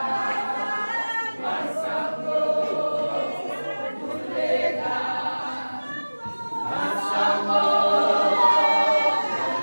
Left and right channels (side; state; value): both; inverted; correlation -1.00